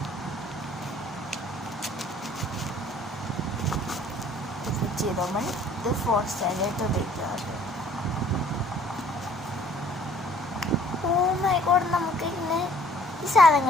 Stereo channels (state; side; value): normal; both; correlation 0.56